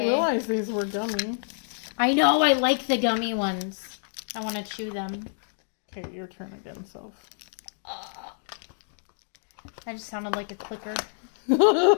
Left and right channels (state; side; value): silent; right; digital silence